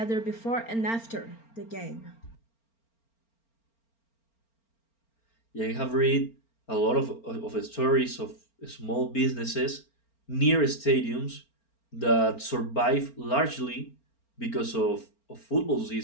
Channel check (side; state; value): right; late; 4.4 ms